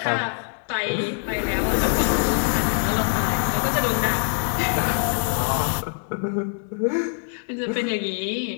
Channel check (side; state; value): right; silent; 59 dB below the other